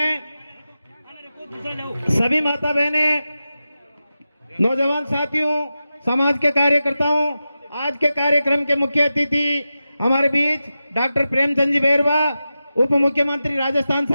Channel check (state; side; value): inverted; both; correlation -0.92